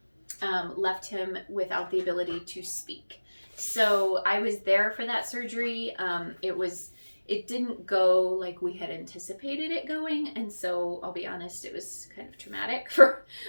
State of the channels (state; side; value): inverted; both; correlation -1.00